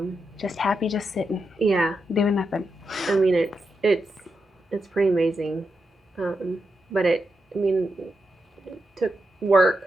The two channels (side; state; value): both; normal; correlation 0.86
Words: happy, just sitting. Yeah, doing nothing. I mean, it's pretty amazing, but it took